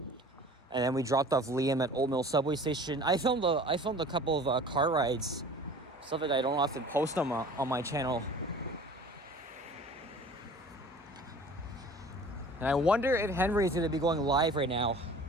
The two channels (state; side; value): normal; both; correlation 0.45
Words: And then we dropped off Liam at Old Mill subway station. I filmed a couple of car rides, stuff that I don't often post on my channel. And I wonder if Henry's going to be going live right now.